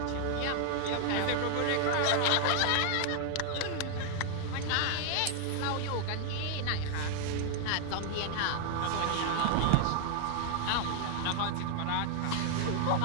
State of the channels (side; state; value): both; different; correlation 0.00